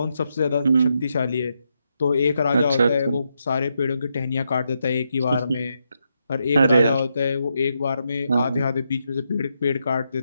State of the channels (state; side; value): inverted; both; correlation -0.82